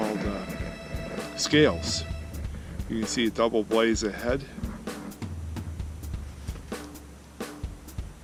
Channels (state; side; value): identical; both; correlation 1.00